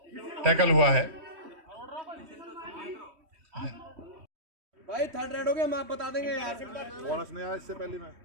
टैकल हुआ है। भाई थर्ड रेड हो गया, हम आप बता देंगे यार। बोनस नहीं आया इससे पहले में।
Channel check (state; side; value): late; left; 3.2 ms